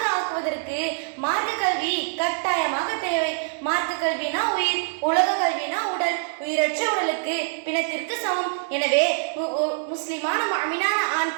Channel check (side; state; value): left; silent; digital silence